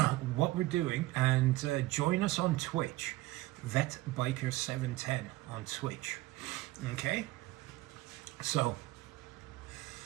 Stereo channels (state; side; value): quieter; left; 18.6 dB